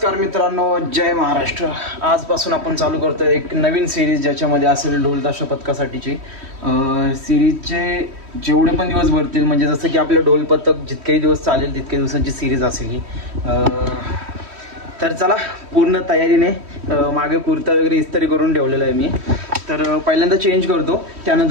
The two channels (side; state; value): left; late; 3.1 ms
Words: मित्रांनो, जय महाराष्ट्र. आजपासून आपण चालू करतोय एक नवीन सिरीज ज्याच्यामध्ये असेल ढोल ताशा पथकासाठीची. सिरीजचे जेवढे पण दिवस भरतील, म्हणजे जसं की आपलं ढोल पथक जितकेही दिवस चालेल तितके दिवसांची सिरीज असेल ही. तर चला, पूर्ण तयारीने मागे कुर्ता वगैरे इस्त्री करून ठेवलेला आहे मी. तर पहिल्यांदा चेंज करतो,